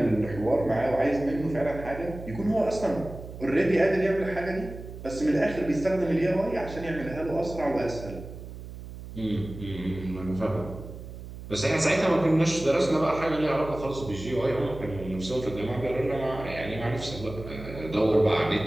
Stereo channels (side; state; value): right; noise; hum, 12 dB below the sound